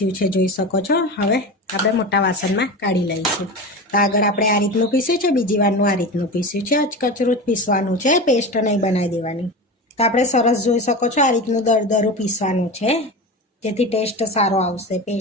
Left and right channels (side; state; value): both; normal; correlation 0.26